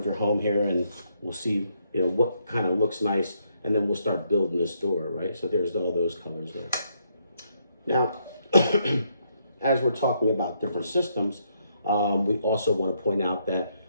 your home here, and we'll see, you know, what kind of looks nice, and then we'll start building this door, right? So there's all those colors there. Now, as we're talking about different systems, we also want to point out that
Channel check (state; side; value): inverted; both; correlation -0.75